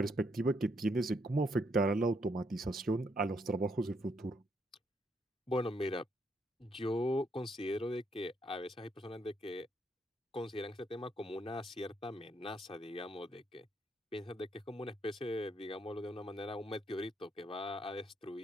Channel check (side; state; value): both; normal; correlation 0.74